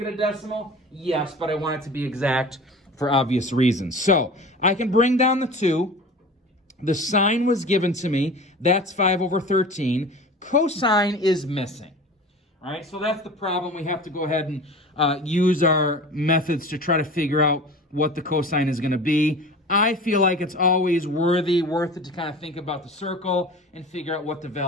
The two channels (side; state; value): both; normal; correlation 0.37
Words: a decimal? Yes, but I want it to be exact for obvious reasons. So I can bring down the 2. The sine was given to me. That's 5 over 13. Cosine is missing. All right, so that's the problem. We have to go ahead and use our methods to try to figure out what the cosine is going to be. I feel like it's always worth it to kind of think about the circle and figure out what the